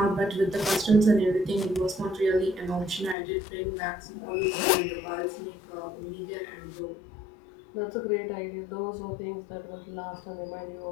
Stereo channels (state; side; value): drops out; right; at 3.2 s